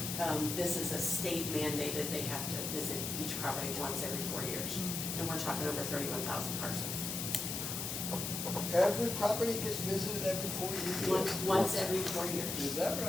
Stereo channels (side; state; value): left; noise; hiss, 3 dB below the sound